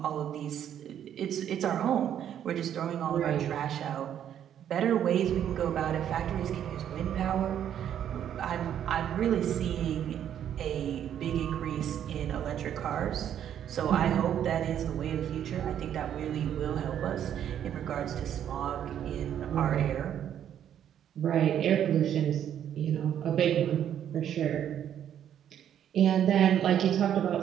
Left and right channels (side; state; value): left; quieter; 9.9 dB